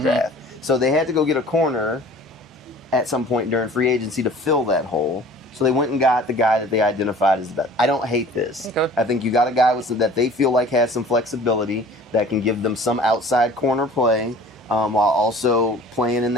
draft. So they had to go get a corner at some point during free agency to fill that hole. So they went and got the guy that they identified as the best. I don't hate this. Okay. I think you got a guy that they feel like has some flexibility, that can give them some outside corner play, while also playing in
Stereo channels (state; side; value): normal; both; correlation 0.47